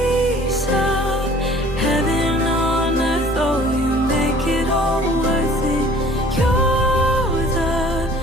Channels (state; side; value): normal; both; correlation 0.51